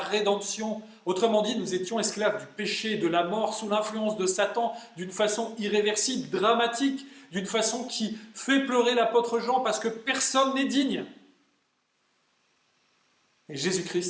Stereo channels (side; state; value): both; identical; correlation 1.00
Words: Autrement dit, nous étions esclaves du péché, de la mort, sous l'influence de Satan, d'une façon irréversible, dramatique, d'une façon qui fait pleurer l'apôtre Jean parce que personne n'est digne. Et